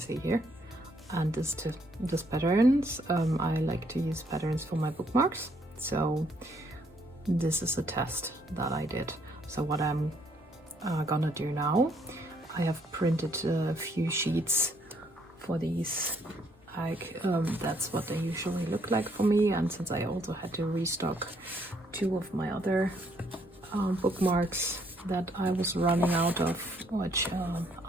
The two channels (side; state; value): both; normal; correlation 0.69